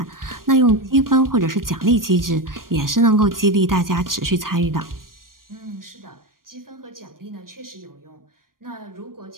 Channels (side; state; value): left; late; 0.91 ms